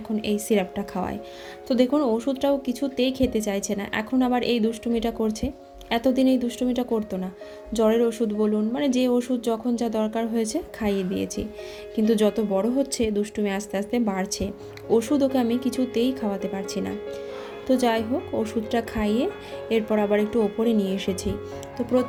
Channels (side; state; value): both; identical; correlation 1.00